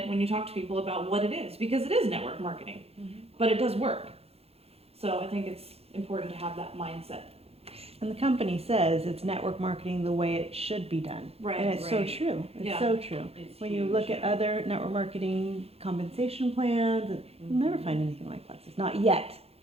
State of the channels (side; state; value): left; late; 0.29 ms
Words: when you talk to people about what it is, because it is network marketing, but it does work. So I think it's important to have that mindset. And the company says it's network marketing the way it should be done. Right. And it's so Right. true. It's Yeah. so true. When you look at other network marketing compensation plans, you'll never find anything like Plexus. Not yet.